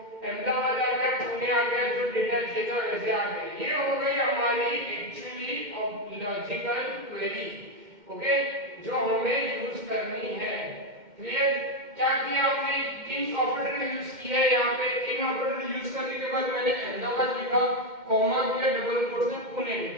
अहमदाबाद आ गया, पुणे आ गया, जो डेटा चाहिए था वैसे आ गया। ये हो गई हमारी एक्चुअली लॉजिकल क्वेरी। ओके, जो हमें यूज करनी है। क्लियर? क्या किया हमने, इन ऑपरेटर यूज किया है। यहाँ पे इन ऑपरेटर यूज करने के बाद मैंने अहमदाबाद लिखा, कॉमा किया, डबल कोट्स में पुणे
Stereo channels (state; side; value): late; left; 2.1 ms